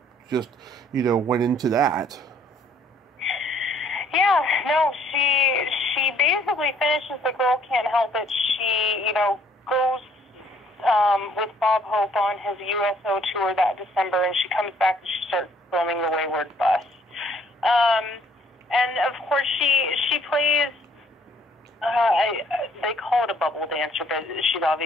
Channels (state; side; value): normal; both; correlation 0.62